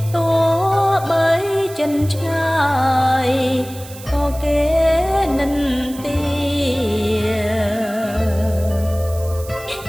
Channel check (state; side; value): noise; right; hiss, 17 dB below the sound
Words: ទោះបីចិនឆ្ងាយក៏គេនិន្ទា